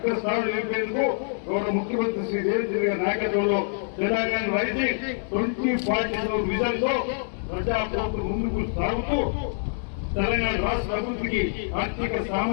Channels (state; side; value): silent; right; digital silence